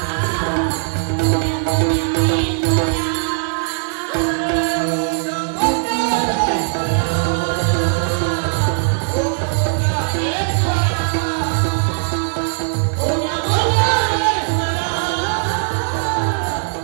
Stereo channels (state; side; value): silent; left; digital silence